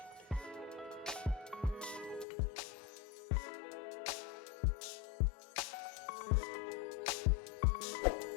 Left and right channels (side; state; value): right; drops out; at 2.2 s